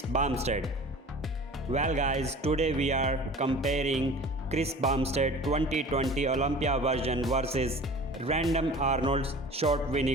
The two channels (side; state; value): both; normal; correlation 0.42